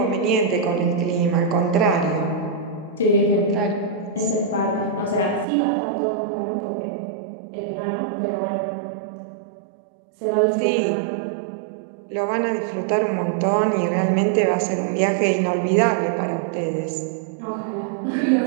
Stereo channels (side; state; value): left; drops out; at 5.5 s